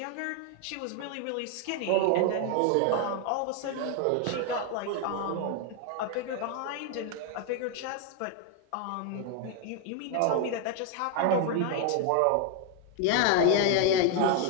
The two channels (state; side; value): different; both; correlation 0.01